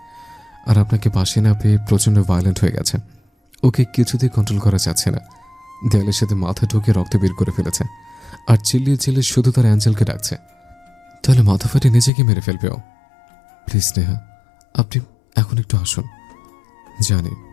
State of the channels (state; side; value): drops out; right; at 12.1 s